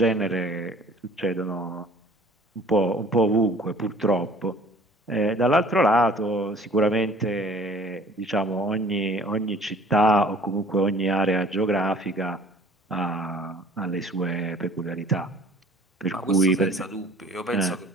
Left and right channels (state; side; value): normal; both; correlation 0.51